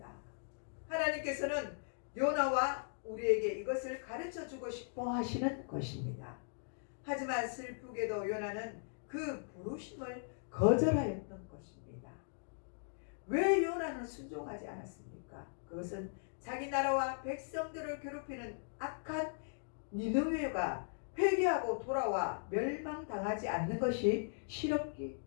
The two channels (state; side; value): silent; right; digital silence